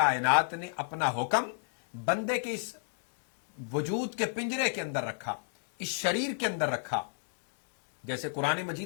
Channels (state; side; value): silent; right; digital silence